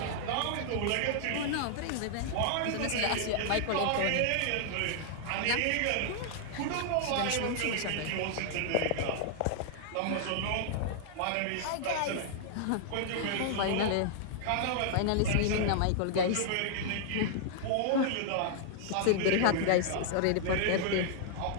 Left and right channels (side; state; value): both; different; correlation 0.00